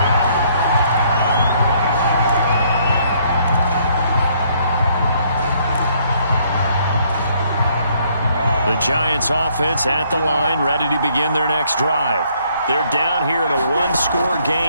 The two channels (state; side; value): inverted; both; correlation -0.66